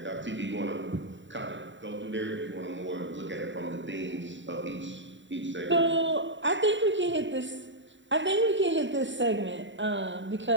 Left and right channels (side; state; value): left; late; 0.54 ms